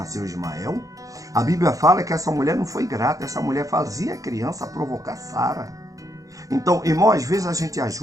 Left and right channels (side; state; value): left; late; 0.16 ms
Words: Ismael. A Bíblia fala que essa mulher não foi grata. Essa mulher fazia a criança provocar Sara. Então, irmão, às vezes a gente